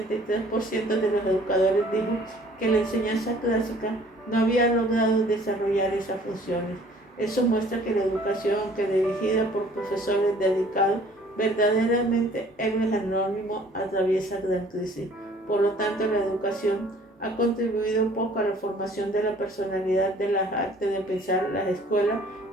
de los educadores dijo que la enseñanza clásica no había logrado desarrollar esas funciones. Eso muestra que la educación, aunque dirigida por profesores dedicados, verdaderamente héroes anónimos, atraviesa gran crisis. Por lo tanto, la educación ha contribuido poco a la formación de la personalidad, de las artes de pensar. Las escuelas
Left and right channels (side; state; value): both; normal; correlation 0.54